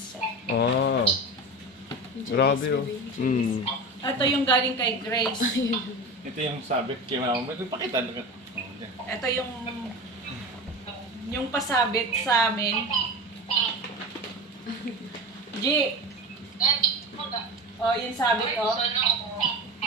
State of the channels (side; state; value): both; normal; correlation 0.28